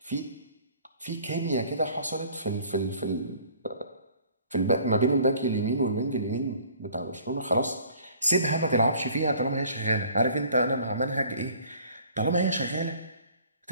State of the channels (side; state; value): both; inverted; correlation -0.53